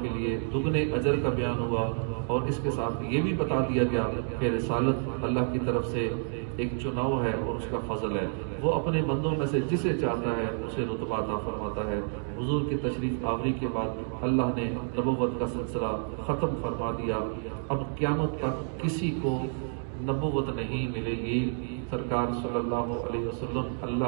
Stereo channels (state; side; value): silent; left; 58 dB below the other